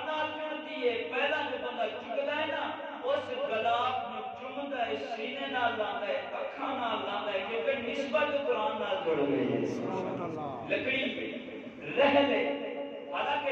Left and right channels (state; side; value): identical; both; correlation 1.00